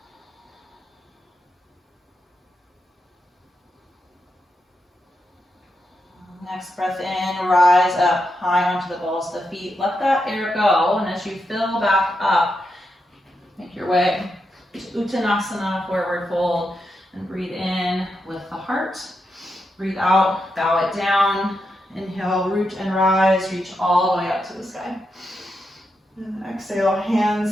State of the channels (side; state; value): both; normal; correlation 0.85